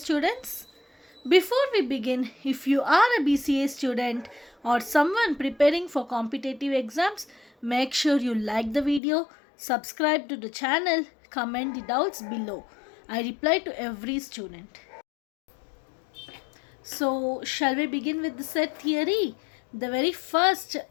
Before we begin, if you are a BCA student or someone preparing for competitive exams, make sure you like the video, subscribe to the channel, comment the doubts below. I reply to every student. So, shall we begin with the set theory? The very first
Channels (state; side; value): drops out; right; at 9.0 s